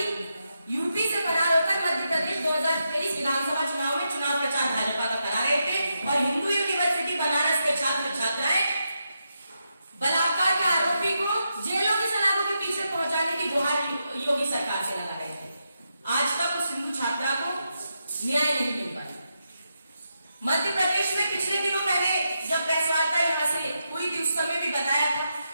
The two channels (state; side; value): inverted; both; correlation -0.85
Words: यूपी से फरार होकर मध्य प्रदेश 2023 विधानसभा चुनाव में चुनाव प्रचार भाजपा का करा रहे थे और हिंदू यूनिवर्सिटी बनारस के छात्र छात्राएं बलात्कार के आरोपी को जेलों की सलाखों के पीछे पहुंचाने की गुहार योगी सरकार से लगा रहे थे। आज तक उस हिंदू छात्रा को न्याय नहीं मिल पाया। मध्य प्रदेश में पिछले दिनों पहले जब प्रेस वार्ता यहां से हुई थी उस समय भी बताया था